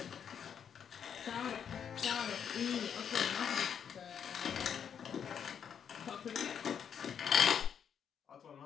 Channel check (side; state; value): right; quieter; 8.0 dB